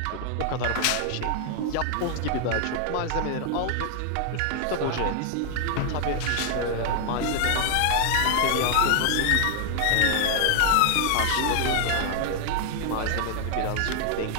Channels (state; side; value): different; both; correlation 0.00